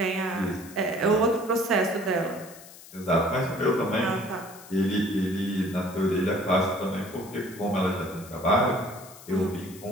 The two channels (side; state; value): left; noise; hiss, 19 dB below the sound